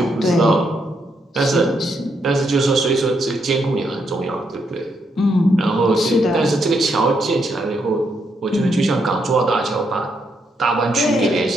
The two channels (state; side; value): normal; both; correlation 0.78